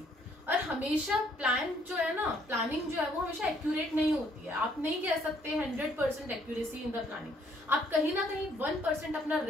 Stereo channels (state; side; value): normal; both; correlation 0.66